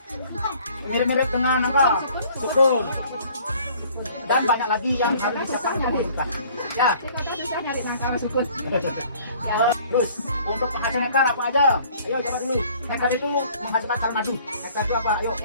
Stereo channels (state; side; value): inverted; both; correlation -0.54